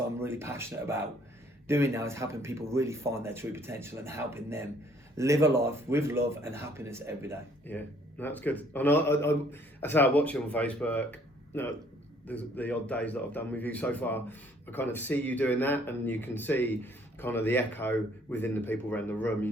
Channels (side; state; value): both; normal; correlation 0.61